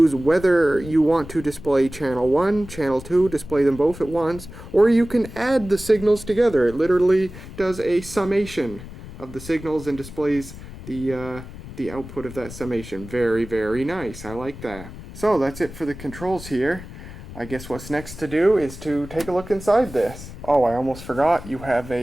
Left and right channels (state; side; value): noise; left; rumble, 14 dB below the sound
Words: whether you want to display channel 1, channel 2, display them both at once, or you can add the signals together. It literally does a summation of the signals and displays the output of that summation. Very, very nice. I like that. So that's it for the controls here. I guess what's next to do is to take a look inside this. Oh, I almost forgot. You have